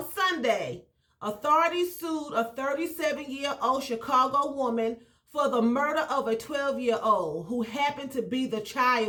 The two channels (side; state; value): both; identical; correlation 1.00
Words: Sunday, authorities sued a 37-year-old Chicago woman for the murder of a 12-year-old who happened to be the